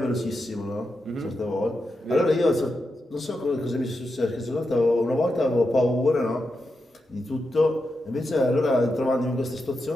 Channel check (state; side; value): normal; both; correlation 0.87